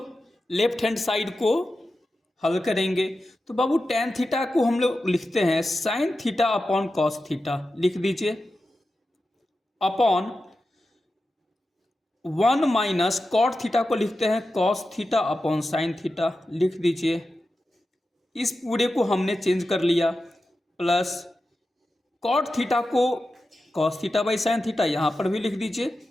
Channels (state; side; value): normal; both; correlation 0.92